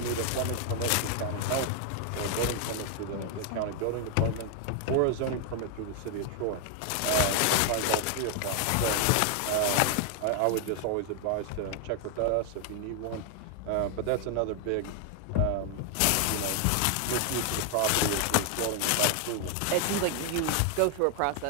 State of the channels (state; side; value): different; both; correlation 0.00